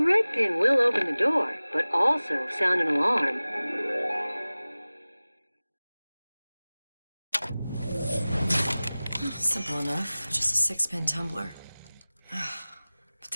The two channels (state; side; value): inverted; both; correlation -0.98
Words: pin will open the door, but also sound an alarm. Simple enough. Just a 6-pin tumbler. But